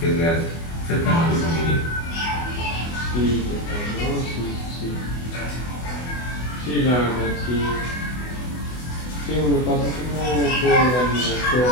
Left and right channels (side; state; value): right; late; 24 ms